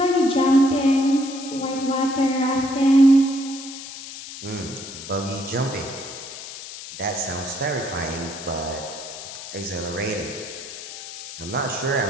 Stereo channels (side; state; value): left; noise; hiss, 12 dB below the sound